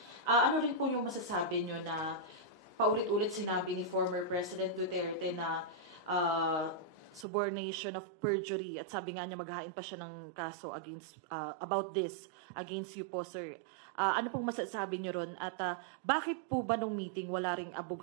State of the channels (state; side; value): drops out; left; at 7.2 s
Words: Ano rin po yung masasabi nyo na paulit-ulit sinabi ni former President Duterte na subornation of perjury at sabi nga niya maghahain pa siya ng kaso against about this against you po, sir. Ano pong masasabi niyo ron? At bakit po ba nung meeting wala ring